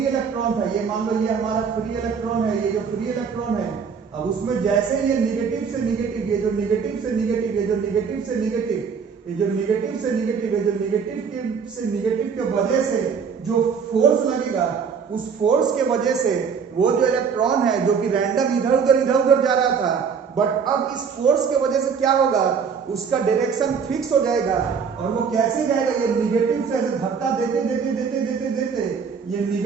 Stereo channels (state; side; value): quieter; left; 6.2 dB